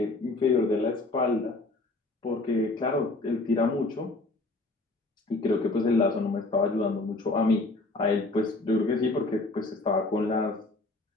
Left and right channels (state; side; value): quieter; right; 3.1 dB